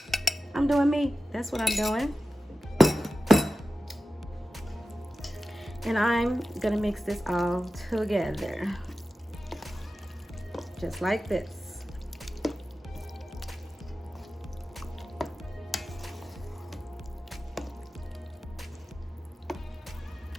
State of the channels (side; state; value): both; normal; correlation 0.94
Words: I'm doing me. That's what I'm doing. And I'm gonna mix this all together. Just like this.